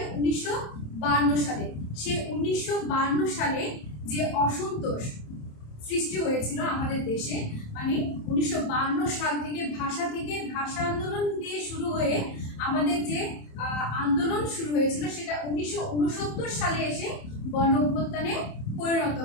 1952 সালে। সেই 1952 সালে যে অসন্তোষ সৃষ্টি হয়েছিল আমাদের দেশে, মানে 1952 সাল থেকে ভাষা আন্দোলন দিয়ে শুরু হয়ে আমাদের যে আন্দোলন শুরু হয়েছিল সেটা 1969 সালে এসে গণ অভ্যুত্থানে পরিণত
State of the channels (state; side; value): late; right; 27 ms